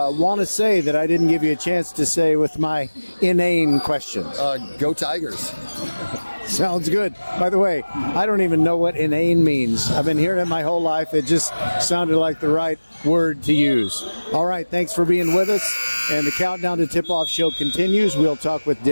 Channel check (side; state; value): both; inverted; correlation -1.00